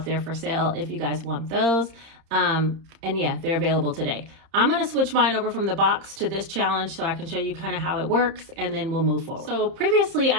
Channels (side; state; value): left; late; 30 ms